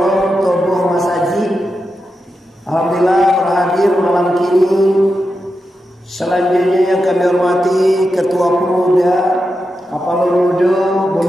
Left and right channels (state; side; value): normal; both; correlation 0.88